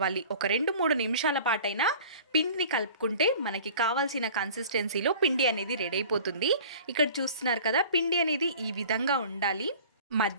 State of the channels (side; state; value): both; inverted; correlation -0.44